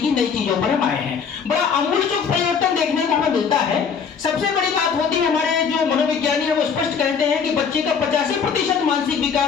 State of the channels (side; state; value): right; quieter; 6.4 dB